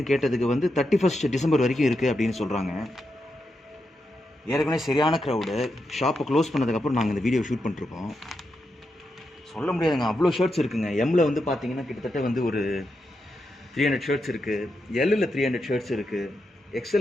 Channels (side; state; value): both; normal; correlation 0.86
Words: கேட்டதுக்கு வந்து 31 டிசம்பர் வரைக்கும் இருக்குது அப்படின்னு சொல்கிறாங்க. ஏற்கனவே சரியான க்ரௌடு. ஷாப்பை க்ளோஸ் பண்ணதுக்கப்புறம் நாங்கள் இந்த வீடியோ ஷூட் பண்ணிருக்கோம். சொல்ல முடியாதுங்க, அவ்வளோ ஷர்ட்ஸ் இருக்குங்க. எம்மில் வந்து பார்த்தீங்கன்னா கிட்டத்தட்ட வந்து ஒரு 300 ஷர்ட்ஸ் இருக்குது. எல்லில் 300 ஷர்ட்ஸ் இருக்குது.